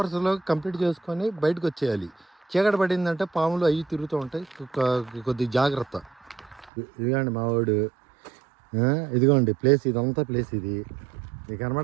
కంప్లీట్ చేసుకొని బయటకు వచ్చేయాలి. చీకటి పడిందంటే పాములు అవి తిరుగుతూ ఉంటాయి, కొద్దిగా జాగ్రత్త. ఇదిగోండి మా వాడు. ఇదిగోండి ప్లేస్, ఇదంతా ప్లేస్. ఇది మీకు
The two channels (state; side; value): drops out; left; at 6.7 s